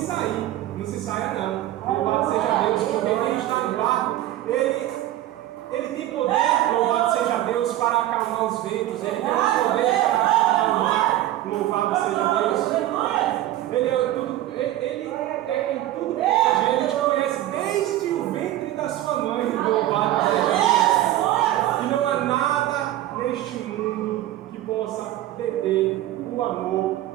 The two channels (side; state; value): left; quieter; 14.3 dB